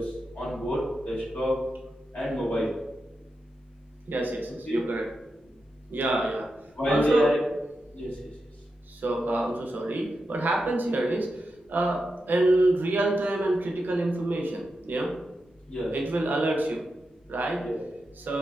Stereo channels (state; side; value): normal; both; correlation 0.88